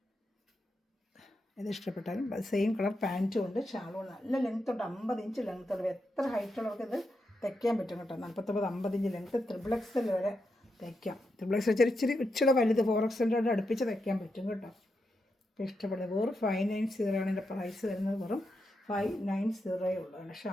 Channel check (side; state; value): both; normal; correlation 0.85